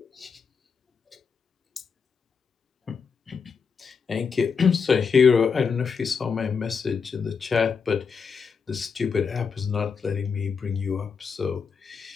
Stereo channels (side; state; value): right; quieter; 5.8 dB